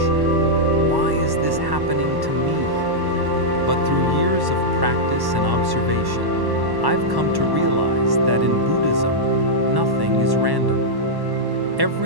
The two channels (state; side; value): late; left; 1.1 ms